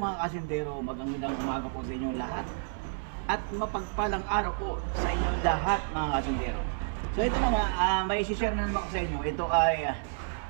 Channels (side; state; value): left; silent; 58 dB below the other